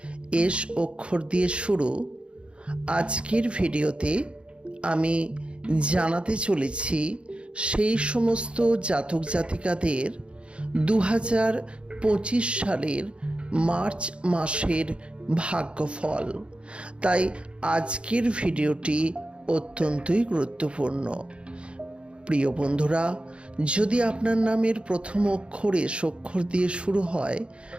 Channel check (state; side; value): late; left; 0.057 ms